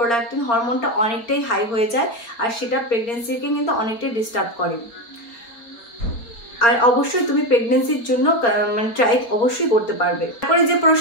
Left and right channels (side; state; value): right; late; 4.3 ms